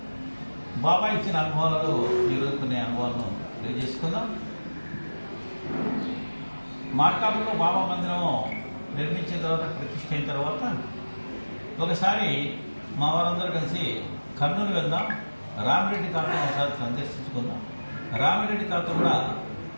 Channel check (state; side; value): inverted; both; correlation -1.00